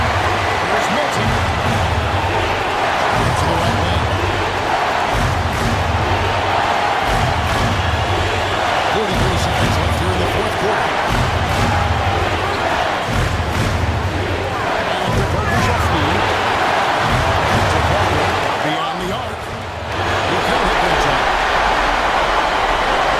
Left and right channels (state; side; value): identical; both; correlation 1.00